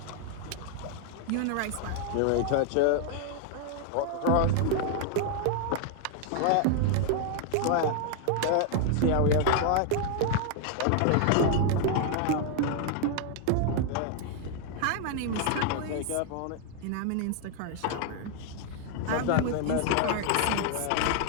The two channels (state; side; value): different; both; correlation 0.00